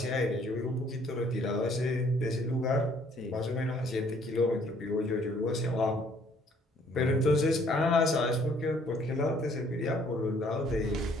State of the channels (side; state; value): both; normal; correlation 0.62